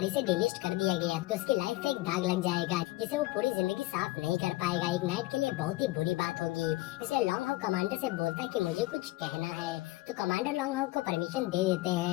से डिलिस्ट कर दिया गया तो उसकी लाइफ पे एक दाग लग जाएगा जिसे वो पूरी जिंदगी साफ नहीं कर पाएगा। एक नाइट के लिए बहुत ही बुरी बात होगी। इसलिए लॉन्ग हाउ कमांडर से बोलता है कि मुझे कुछ कहना है। तो कमांडर लॉन्ग हाउ को परमिशन दे देते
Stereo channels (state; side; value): quieter; right; 19.5 dB